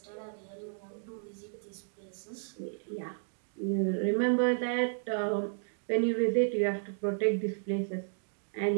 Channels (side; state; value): left; silent; digital silence